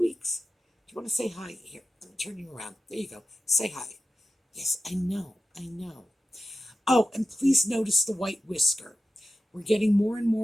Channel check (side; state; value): both; normal; correlation 0.92